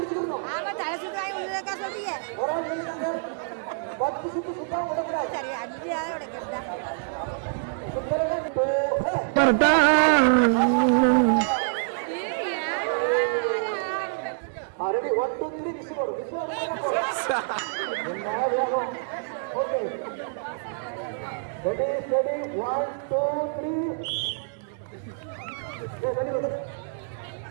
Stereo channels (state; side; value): silent; left; digital silence